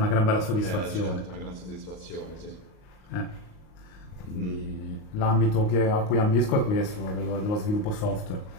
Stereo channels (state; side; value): late; right; 38 ms